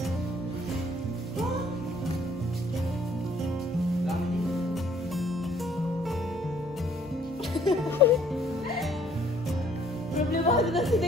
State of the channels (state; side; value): normal; both; correlation 0.61